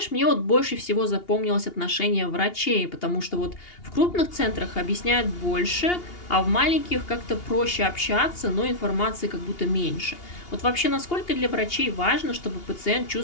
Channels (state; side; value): late; right; 2.8 ms